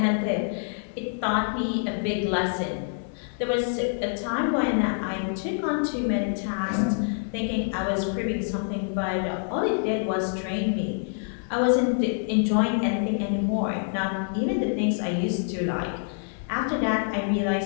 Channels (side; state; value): right; silent; 61 dB below the other